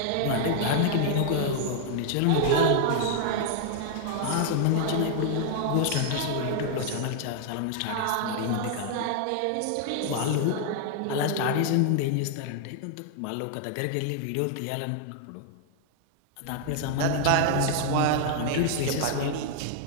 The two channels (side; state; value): both; different; correlation 0.00